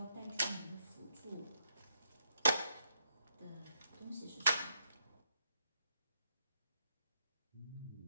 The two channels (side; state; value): both; inverted; correlation -0.78